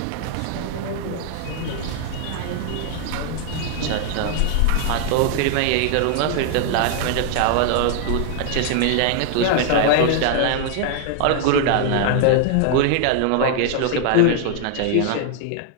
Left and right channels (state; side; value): different; both; correlation 0.00